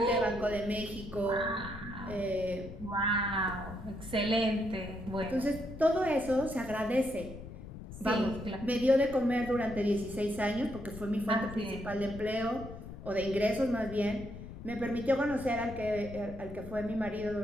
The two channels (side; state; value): left; noise; rumble, 12 dB below the sound